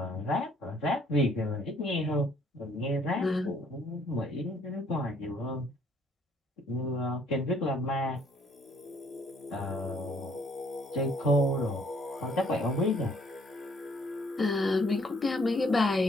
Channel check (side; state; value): both; normal; correlation 0.63